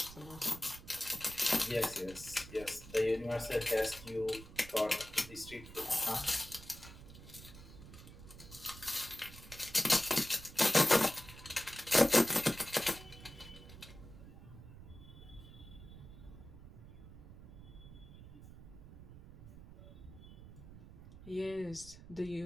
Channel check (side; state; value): right; noise; rumble, 16 dB below the sound